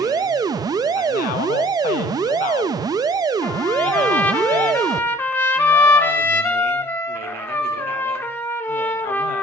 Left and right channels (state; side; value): normal; both; correlation 0.53